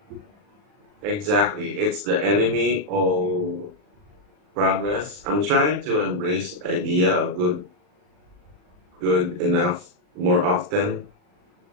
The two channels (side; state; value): left; late; 39 ms